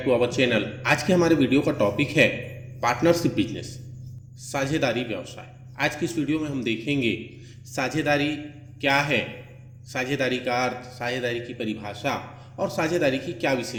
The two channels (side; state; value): both; identical; correlation 1.00